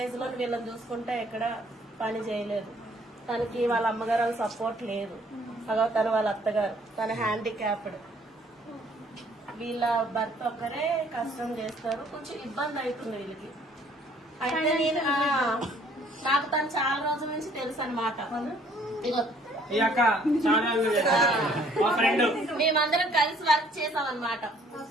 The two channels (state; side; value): normal; both; correlation 0.60